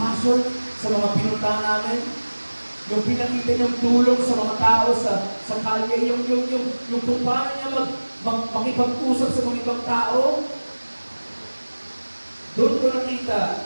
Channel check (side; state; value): both; inverted; correlation -1.00